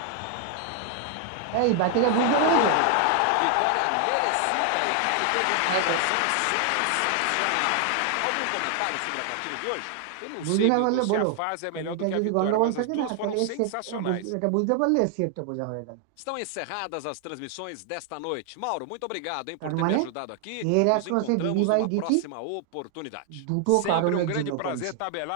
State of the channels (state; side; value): different; both; correlation 0.00